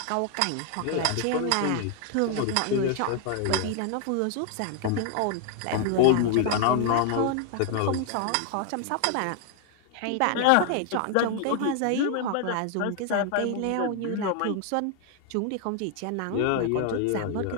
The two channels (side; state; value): both; different; correlation 0.00